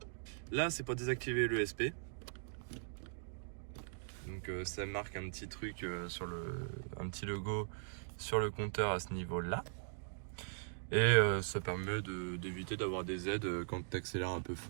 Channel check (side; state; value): left; silent; digital silence